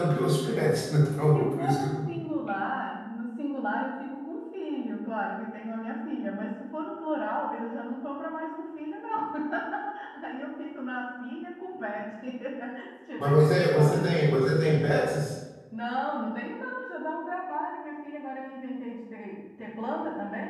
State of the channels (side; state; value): both; identical; correlation 1.00